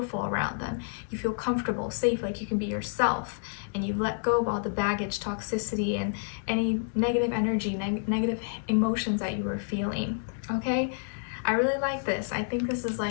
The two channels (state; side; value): silent; right; digital silence